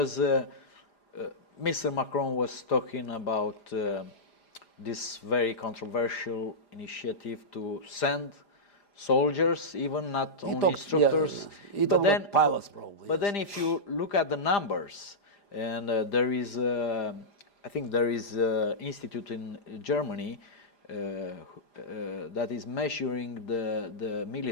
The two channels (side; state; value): right; late; 5.0 ms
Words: Mr. Macron was talking about this very controversial initiative to send soldiers, even not only instructors. Yeah. He talked about pilots, probably. But then if you look at the numbers, and there is, I think there is an institute in Germany that is measuring the